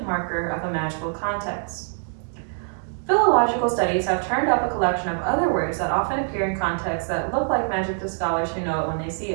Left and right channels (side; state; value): left; silent; 62 dB below the other